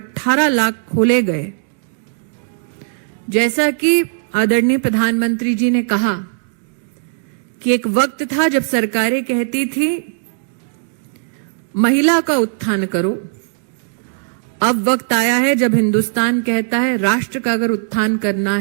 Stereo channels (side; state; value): left; silent; 67 dB below the other